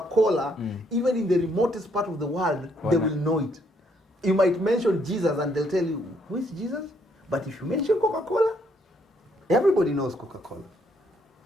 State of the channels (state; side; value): normal; both; correlation 0.70